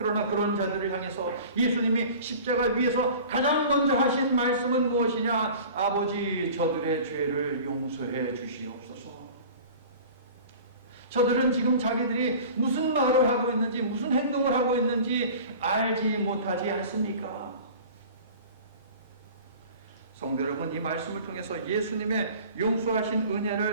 그런 자들을 향해서 예수님이 십자가 위에서 가장 먼저 하신 말씀은 무엇이냐? 아버지, 저들의 죄를 용서해 주시옵소서. 저들은 지금 자기들이 무슨 말을 하고 있는지 무슨 행동을 하고 있는지 알지 못하지 않습니까? 성도 여러분, 이 말씀을 통해서 예수님의 용서하신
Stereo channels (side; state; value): both; inverted; correlation -0.41